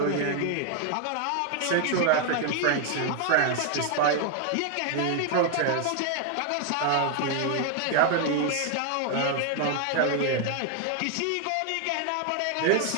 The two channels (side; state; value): both; different; correlation 0.00